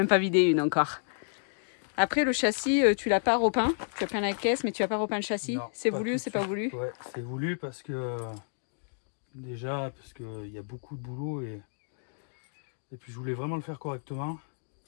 pas vidé une encore. Après, le châssis, tu l'as pas repeint. Tu as peint la caisse, mais tu n'as pas repeint le châssis. C'est voulu ou c'est pas voulu? Ouais, c'est voulu parce que... Parce qu'il y a beaucoup de boulot et puis je voulais vraiment le faire correctement.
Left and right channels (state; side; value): silent; right; digital silence